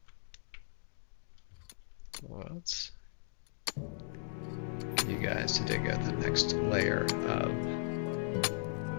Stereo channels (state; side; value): silent; right; digital silence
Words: Let's get you guys to dig out the next layer of